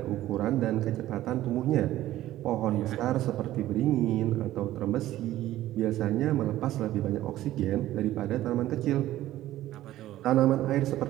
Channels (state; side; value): quieter; left; 14.5 dB